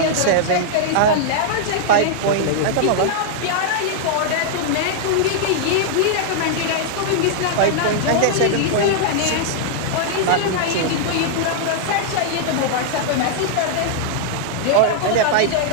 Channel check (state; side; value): different; both; correlation -0.01